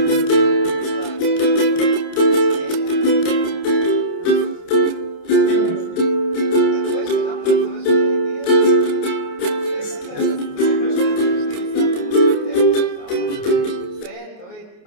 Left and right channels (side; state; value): right; late; 28 ms